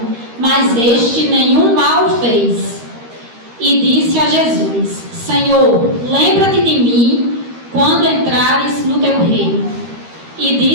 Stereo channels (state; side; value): late; left; 13 ms